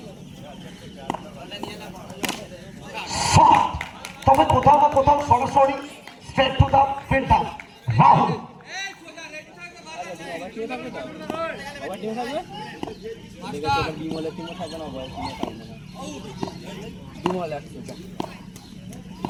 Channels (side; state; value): both; identical; correlation 1.00